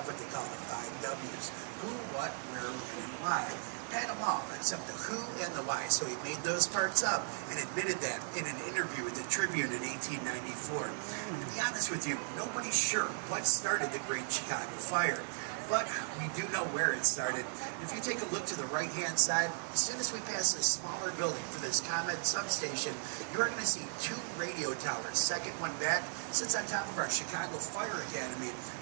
what they call the 5 W's. Who, what, where, when, and why. Had them all, except the who and the why. So he made those parts up and admitted that in an interview with the Tribune in 1894. And to be honest with you, nobody's sure what started the Great Chicago Fire. But we do know where it started. If you take a look to the right-hand side, as soon as we pass this smaller building for this ComEd substation, you're going to see 2 radio towers. Second one back sits on top of our Chicago Fire Academy,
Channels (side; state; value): left; silent; 53 dB below the other